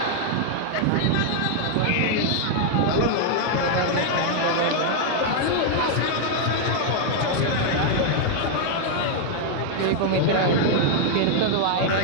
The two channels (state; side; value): different; both; correlation 0.00